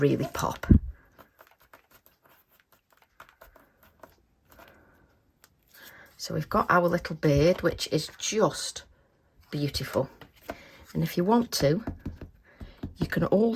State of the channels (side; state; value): both; identical; correlation 1.00